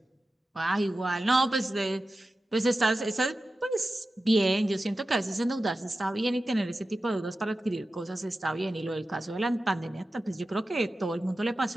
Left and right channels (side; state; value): both; normal; correlation 0.93